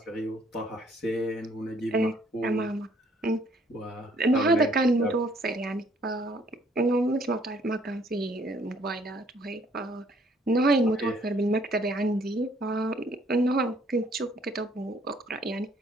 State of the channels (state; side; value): normal; both; correlation 0.63